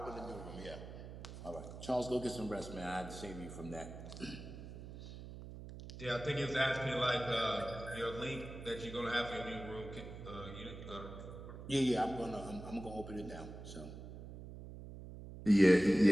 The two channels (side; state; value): right; noise; hum, 12 dB below the sound